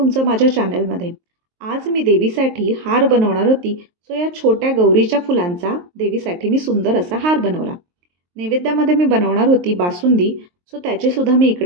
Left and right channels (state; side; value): late; left; 23 ms